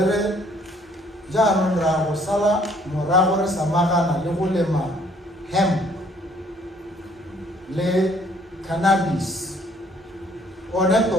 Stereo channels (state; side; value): normal; both; correlation 0.62